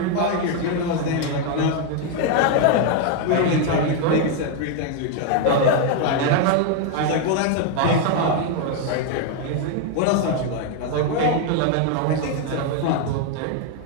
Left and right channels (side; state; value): both; different; correlation 0.01